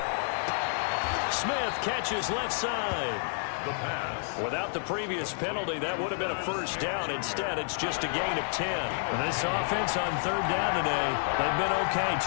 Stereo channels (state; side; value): silent; right; digital silence